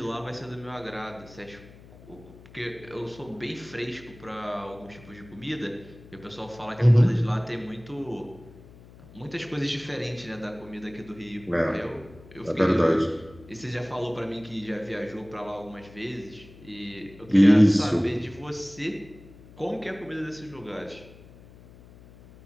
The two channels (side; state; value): left; noise; hum, 21 dB below the sound